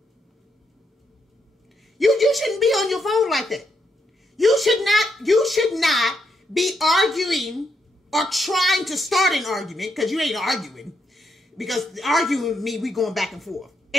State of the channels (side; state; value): both; normal; correlation 0.79